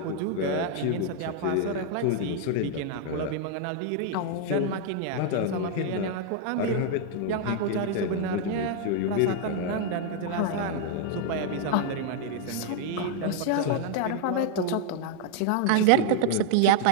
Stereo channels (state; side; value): different; both; correlation 0.00